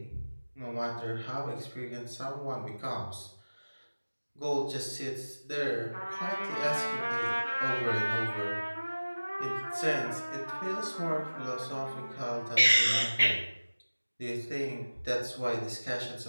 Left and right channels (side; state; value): both; inverted; correlation -1.00